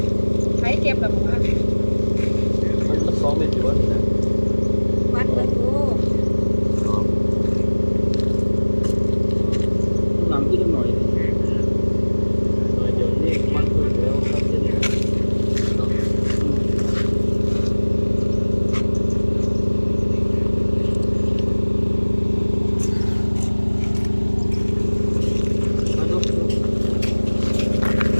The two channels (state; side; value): inverted; both; correlation -1.00